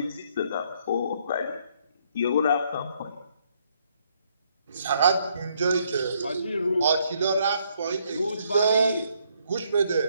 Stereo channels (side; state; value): both; inverted; correlation -0.70